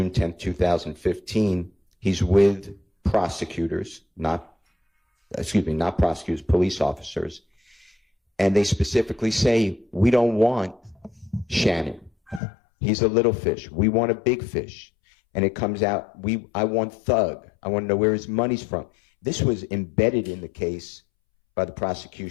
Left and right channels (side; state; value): right; drops out; at 12.4 s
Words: 10, 2015, he's with prosecutors, not prosecutors, police officers. And they specifically say, we don't want Shannon. He's a little fish. We want a big fish. And it comes out, I want Thug. I want to know where his money's from. This was embedded in the case by the